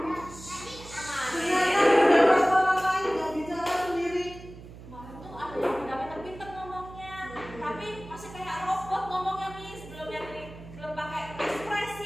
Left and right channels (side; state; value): right; noise; hum, 16 dB below the sound